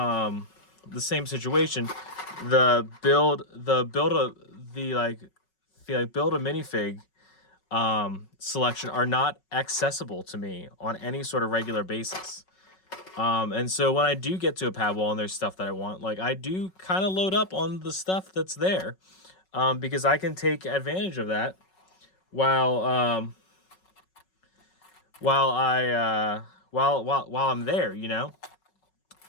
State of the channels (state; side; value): late; right; 5.4 ms